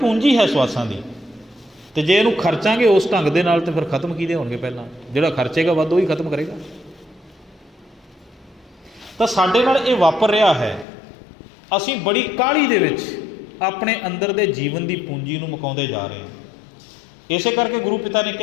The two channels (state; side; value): drops out; right; at 10.9 s